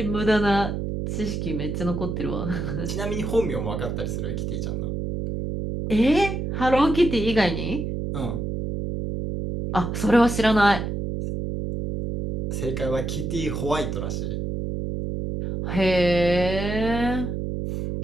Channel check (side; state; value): right; noise; hum, 3 dB below the sound